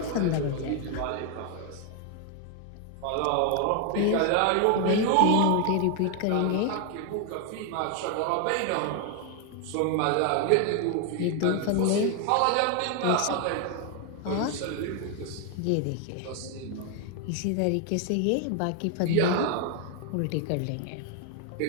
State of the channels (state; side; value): different; both; correlation 0.01